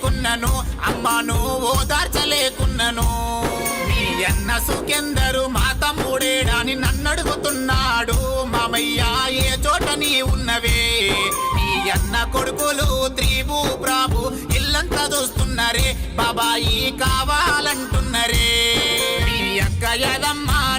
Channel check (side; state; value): both; identical; correlation 1.00